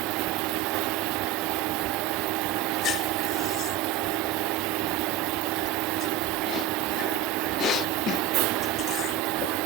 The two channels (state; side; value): quieter; left; 9.5 dB